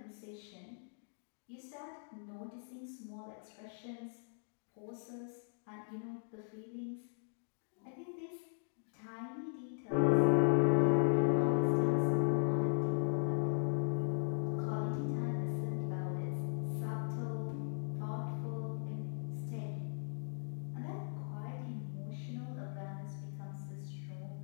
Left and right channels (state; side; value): silent; right; digital silence